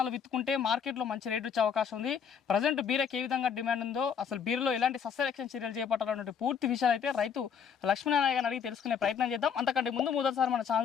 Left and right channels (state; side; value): quieter; right; 7.2 dB